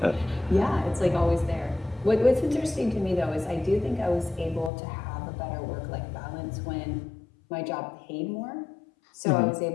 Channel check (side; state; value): right; drops out; at 4.7 s